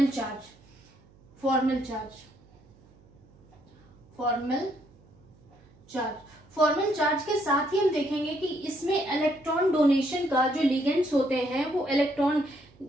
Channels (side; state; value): right; noise; hum, 28 dB below the sound